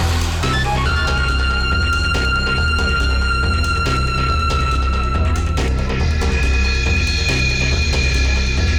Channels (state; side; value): identical; both; correlation 1.00